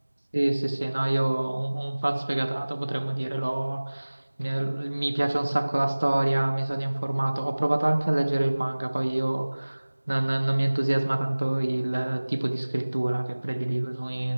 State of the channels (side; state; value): both; inverted; correlation -1.00